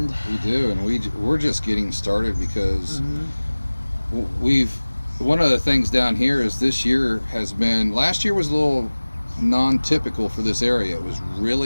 we do, and we're just getting started because we've one of the things down here is this year has been, last year was a little non-typical for this area. It was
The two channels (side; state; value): both; inverted; correlation -1.00